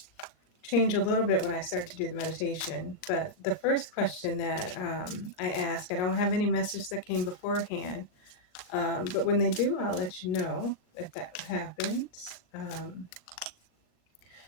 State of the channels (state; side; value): late; right; 38 ms